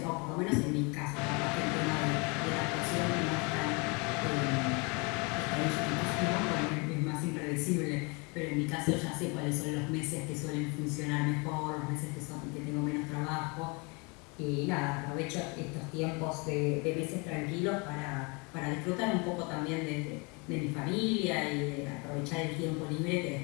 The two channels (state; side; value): quieter; right; 30.4 dB